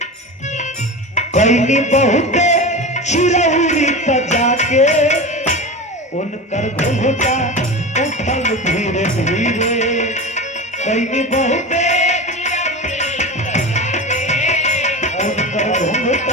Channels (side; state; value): both; normal; correlation 0.27